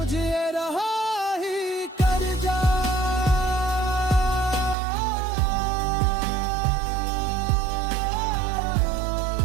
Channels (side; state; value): left; drops out; at 4.8 s